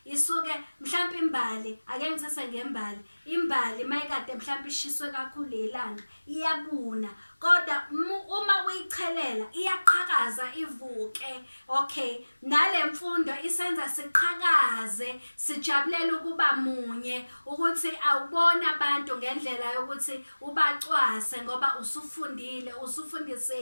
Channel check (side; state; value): both; inverted; correlation -1.00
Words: isuke mhlawumbe imbali, ake ngithathe ngembali. Imbali mayikade mhlawumbe ishiswe kakhulu ilanga iyabuna, kodwa uma uyichelela iyaqhakaza ivuke. Okay, nale mfundo isenza siqhakaze, sijabulela ukuba munye, ukuthi awubona abantu ngendlela yokuthi ubacwase ngoba usufundile,